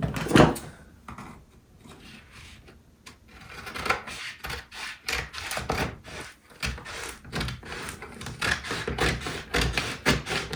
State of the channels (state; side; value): identical; both; correlation 1.00